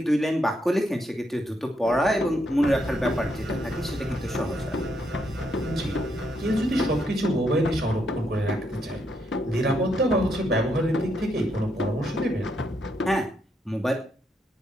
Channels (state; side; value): normal; both; correlation 0.77